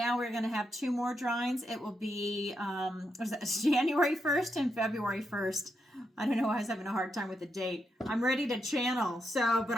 we're going to have two more drawings. It will be January 1st and February 1st. I don't know why I was having a hard time with the date. I'm ready to channel, but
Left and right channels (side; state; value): both; normal; correlation 0.82